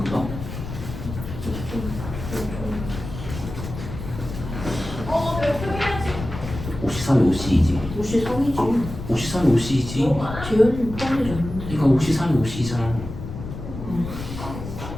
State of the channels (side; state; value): left; noise; rumble, 9 dB below the sound